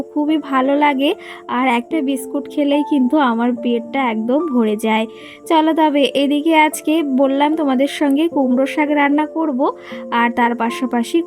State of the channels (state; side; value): identical; both; correlation 1.00